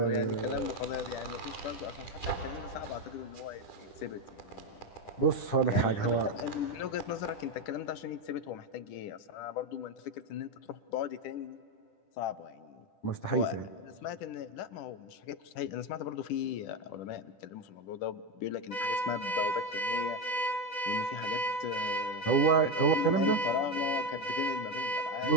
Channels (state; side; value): late; right; 10 ms